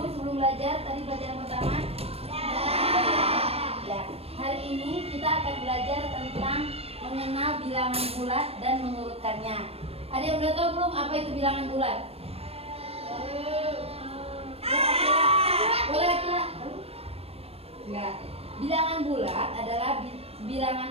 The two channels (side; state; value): left; late; 0.29 ms